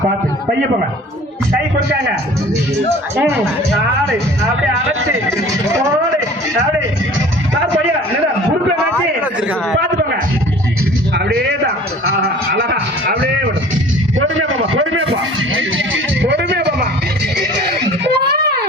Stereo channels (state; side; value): normal; both; correlation 0.46